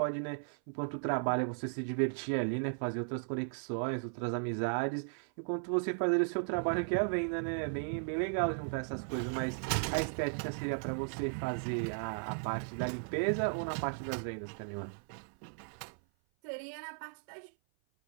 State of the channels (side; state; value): left; silent; 54 dB below the other